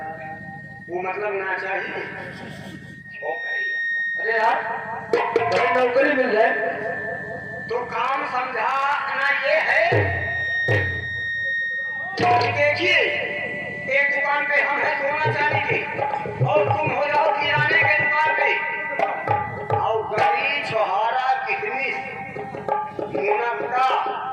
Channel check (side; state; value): both; identical; correlation 1.00